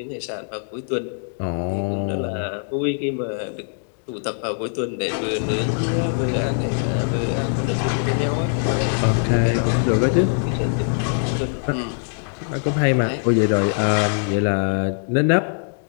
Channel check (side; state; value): right; silent; digital silence